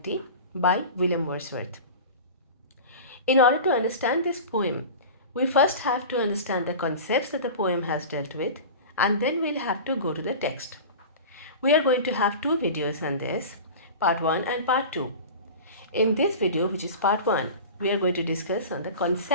by William Wordsworth. In order to understand this poem, we first have to understand the concepts that the poem has dealt with, and then we'll have to go to the text. We are going to have two videos on this, part 1 and part 2. In this video, which is part 1, we are going to discuss on the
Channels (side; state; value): both; inverted; correlation -0.33